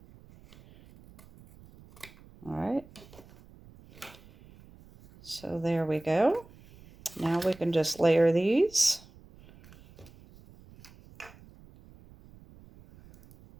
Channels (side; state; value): right; noise; rumble, 23 dB below the sound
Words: All right. So there we go. Now we can just layer these.